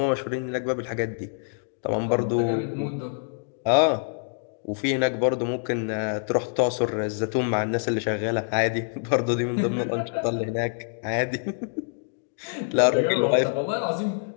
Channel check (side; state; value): right; silent; 61 dB below the other